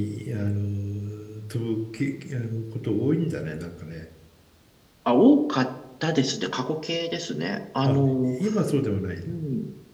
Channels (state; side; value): identical; both; correlation 1.00